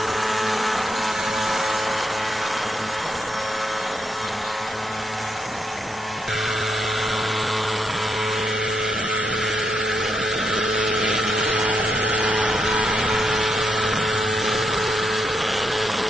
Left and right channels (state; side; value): normal; both; correlation 0.80